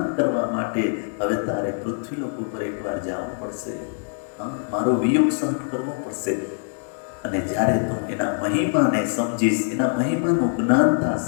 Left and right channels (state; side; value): silent; right; digital silence